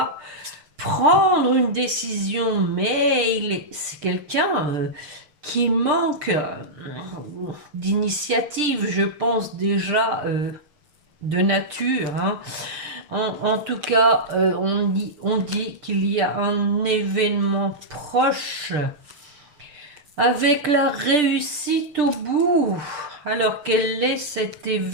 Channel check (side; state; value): left; late; 6.7 ms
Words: prendre une décision, mais c'est quelqu'un qui manque d'initiative, je pense déjà de nature. Hein. En tout cas, on dit qu'il y a un événement proche avec la réussite au bout. Alors quel est cet